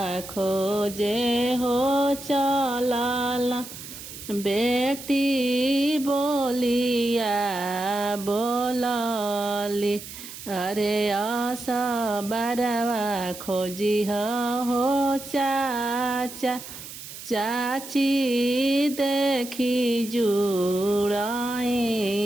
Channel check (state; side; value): noise; right; hiss, 13 dB below the sound